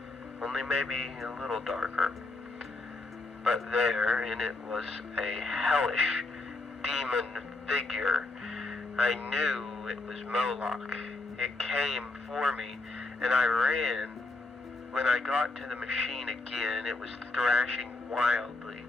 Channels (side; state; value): right; quieter; 3.2 dB